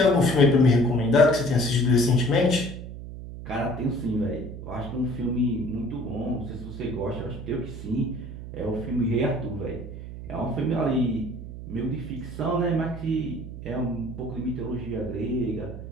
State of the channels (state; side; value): noise; right; hum, 10 dB below the sound